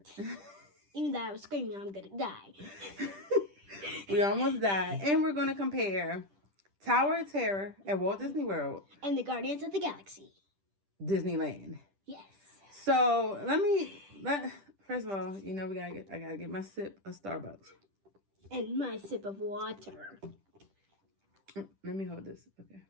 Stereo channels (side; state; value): left; late; 10 ms